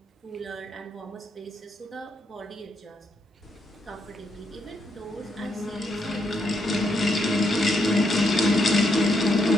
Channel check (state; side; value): normal; both; correlation 0.78